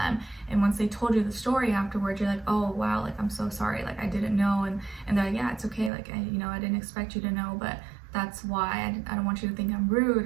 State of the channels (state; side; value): drops out; left; at 5.9 s